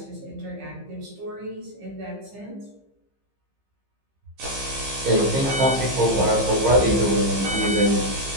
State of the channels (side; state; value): left; late; 15 ms